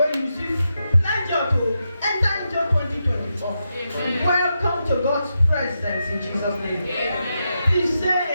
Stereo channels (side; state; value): both; inverted; correlation -0.86